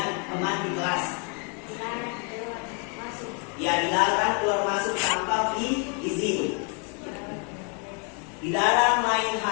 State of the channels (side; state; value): right; quieter; 38.1 dB